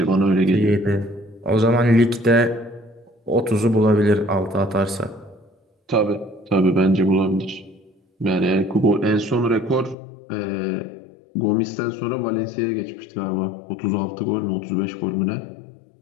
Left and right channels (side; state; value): right; drops out; at 10.0 s